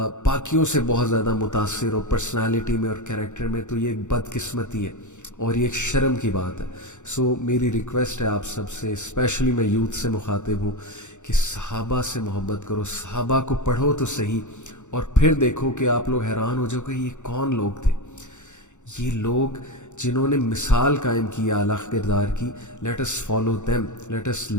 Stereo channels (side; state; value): right; late; 0.84 ms